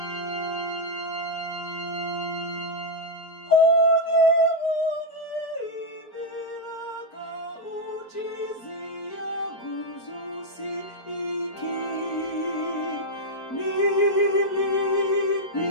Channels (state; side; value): late; right; 4.5 ms